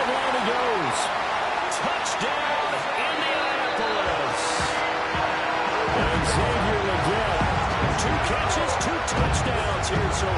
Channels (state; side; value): identical; both; correlation 1.00